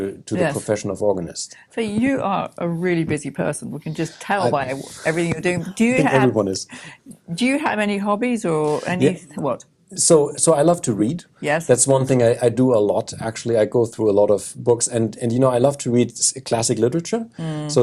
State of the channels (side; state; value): both; identical; correlation 1.00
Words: the profession of organist. So you are a really busy person. We can just tell by everything you're doing. Do you I think have everyone is. Do you have any hobbies or any what? So I love to read. Yes. That's one thing I do a lot. Actually, I go through a lot of books, and you know, I love to read classic literature. So